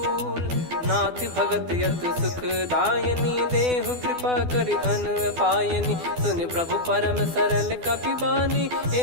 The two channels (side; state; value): left; late; 12 ms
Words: नाथ भगत यतु सुख दायनी देहु कृपा करि अन पायनी। सुन प्रभु परम सरल कपि बानी